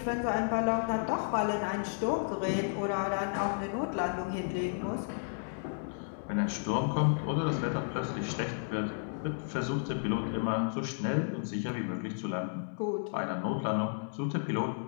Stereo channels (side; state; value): right; silent; digital silence